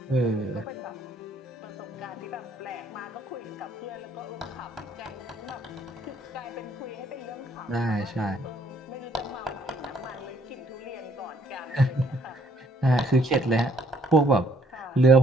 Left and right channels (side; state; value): both; normal; correlation 0.65